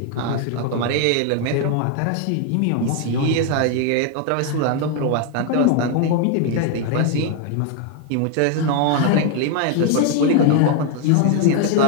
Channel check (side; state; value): both; different; correlation 0.01